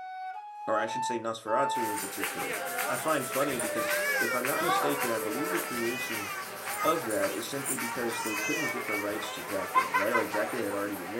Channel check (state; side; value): identical; both; correlation 1.00